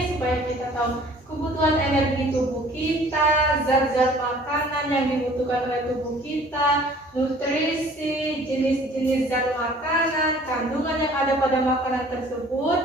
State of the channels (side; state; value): both; normal; correlation 0.52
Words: supaya kita tahu kebutuhan energi tubuh kita, zat-zat makanan yang dibutuhkan oleh tubuh kita, nutrisi, jenis-jenis zat makanan, kandungan yang ada pada makanan